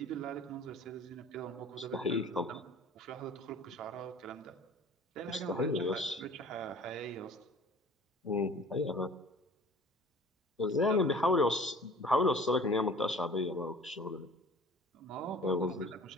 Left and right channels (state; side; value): normal; both; correlation 0.47